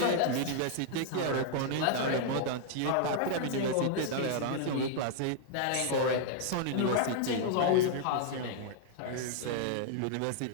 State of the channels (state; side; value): different; both; correlation -0.01